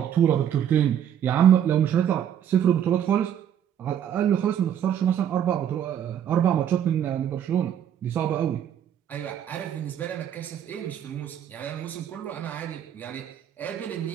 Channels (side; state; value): left; quieter; 9.5 dB